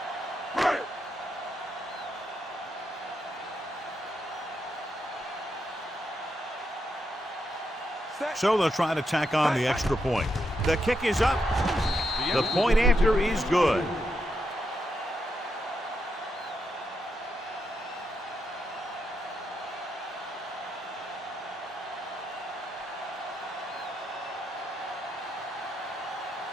So they'll try to tack on the extra point. The kick is up. The point after is good.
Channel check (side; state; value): both; normal; correlation 0.82